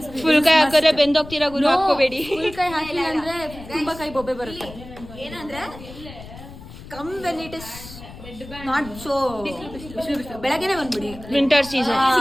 Full ಕೈ ಹಾಕಿದ್ರೆ ಬೆಂದೋಗ್ತೀರಾ ಗುರು, ಹಾಕೋಬೇಡಿ. ಫುಲ್ ಕೈ ಹಾಕಿಲ್ಲ ಅಂದ್ರೆ ತುಂಬಾ ಕೈ ಬೊಬ್ಬೆ ಬರುತ್ತೆ. ಏನಂದ್ರೆ come when it is not so ಬೆಳಗ್ಗೆನೆ ಬಂದ್ಬಿಡಿ. Winter season.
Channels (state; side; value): noise; left; rumble, 16 dB below the sound